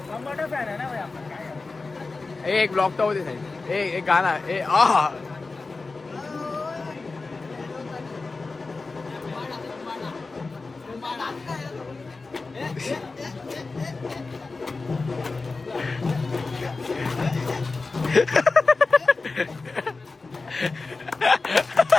टमाटर फॅन आहे ना भाई आपण. काय एक ब्लॉक तर होते साहेब. एक गाणं.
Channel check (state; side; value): quieter; right; 3.8 dB